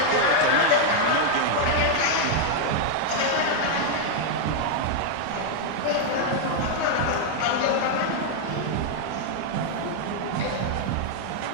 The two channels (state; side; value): different; both; correlation 0.00